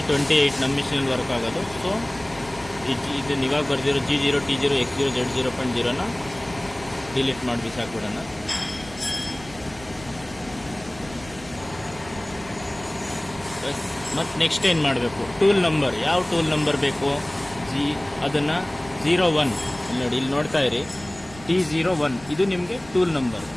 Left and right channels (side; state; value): right; noise; rumble, 18 dB below the sound